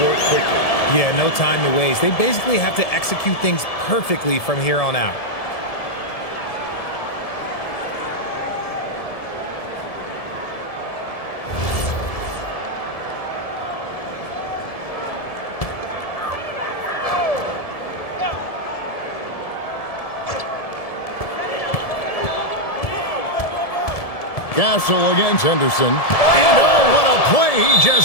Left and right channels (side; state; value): right; late; 1.7 ms